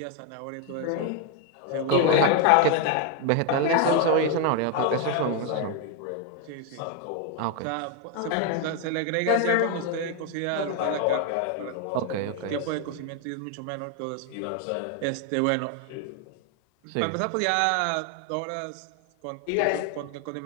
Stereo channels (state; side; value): different; both; correlation 0.01